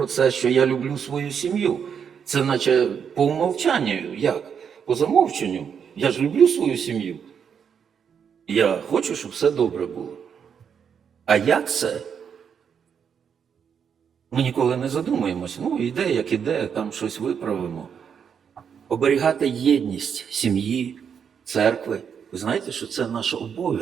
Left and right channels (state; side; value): quieter; left; 7.3 dB